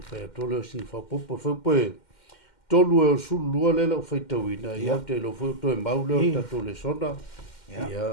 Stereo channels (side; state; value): right; late; 2.1 ms